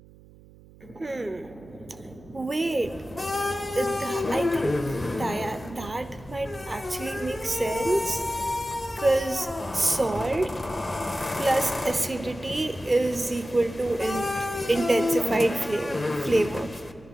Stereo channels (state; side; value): noise; right; hum, 23 dB below the sound